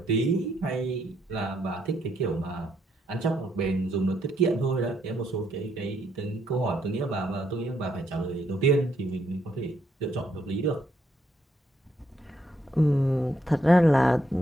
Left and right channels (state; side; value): normal; both; correlation 0.74